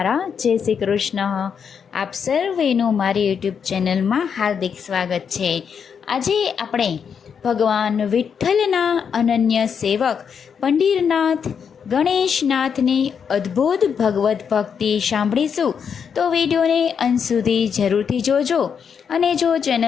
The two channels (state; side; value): quieter; right; 7.0 dB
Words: જય શ્રી કૃષ્ણ. આપ સર્વેનું મારી યુટ્યુબ ચેનલમાં હાર્દિક સ્વાગત છે. આજે આપણે ભગવાન વિઠ્ઠલના અનન્ય સેવક પંઢરીનાથ ગણેશનાથની અદ્ભુત ભગવદ્ ભક્તિ સાંભળીશું. તો વિડીયોને અંત સુધી જરૂરથી જોજો. અને જો